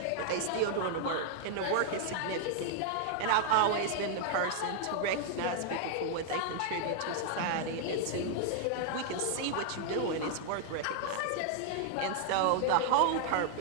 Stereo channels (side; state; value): both; different; correlation 0.00